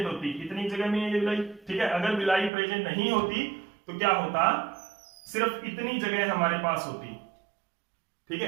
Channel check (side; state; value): left; drops out; at 2.5 s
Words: होती, इतनी जगह में ये विलाई, ठीक है, अगर विलाई प्रेजेंट नहीं होती तो क्या होता, सिर्फ इतनी जगह हमारे पास होती, ठीक